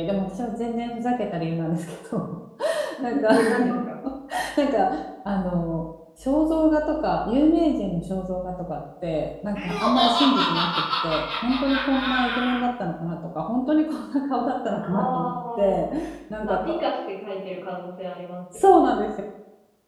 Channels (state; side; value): identical; both; correlation 1.00